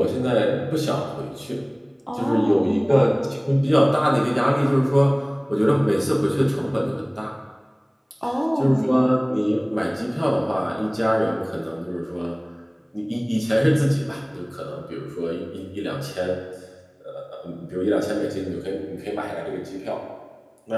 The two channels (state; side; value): identical; both; correlation 1.00